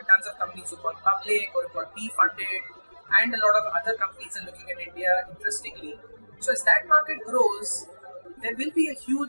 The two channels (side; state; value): both; inverted; correlation -1.00